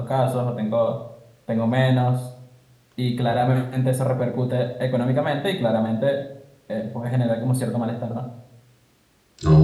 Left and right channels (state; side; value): identical; both; correlation 1.00